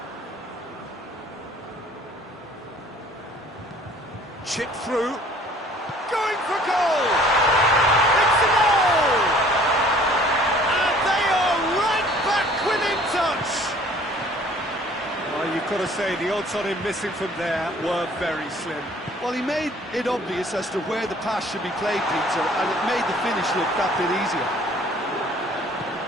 Chip through. Going for goal! It's a goal! And they are right back within touch! Well, you've got to say the odds on him missing from there were very slim. Well, he made it obvious as to where the pass should be played, Peter, and it made the finish look that bit easier.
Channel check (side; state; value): both; normal; correlation 0.54